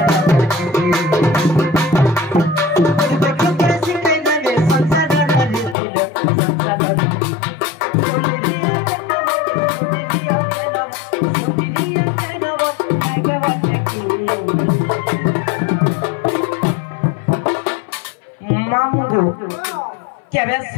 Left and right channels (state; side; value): drops out; right; at 5.8 s